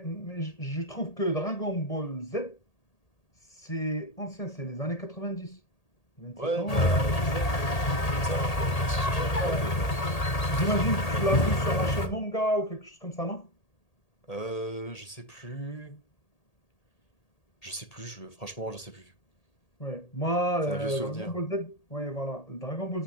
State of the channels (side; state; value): right; late; 1.8 ms